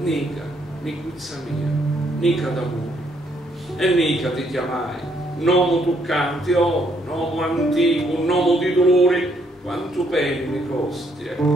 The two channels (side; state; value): both; normal; correlation 0.71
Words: Nica, nicuzza mia, nica d'amore. E Nica ti chiamai, nomo toccante, oh, nomo antico, nomo di dolori, quanto peni mi costi e